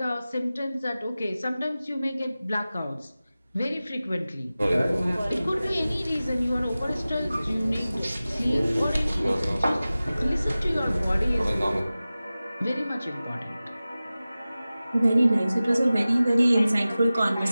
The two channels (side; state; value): both; inverted; correlation -0.96